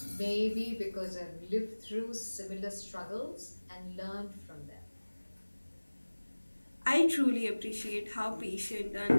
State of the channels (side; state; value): both; inverted; correlation -1.00